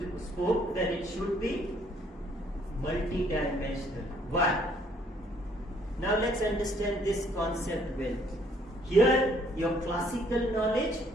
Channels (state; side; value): normal; both; correlation 0.64